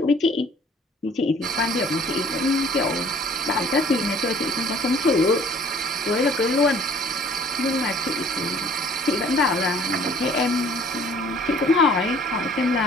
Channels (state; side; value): normal; both; correlation 0.55